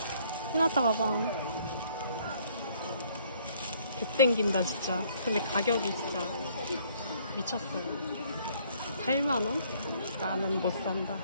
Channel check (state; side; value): inverted; both; correlation -0.63